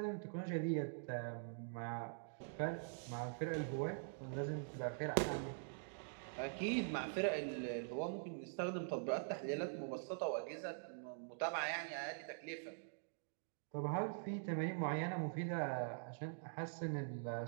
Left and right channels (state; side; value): silent; left; digital silence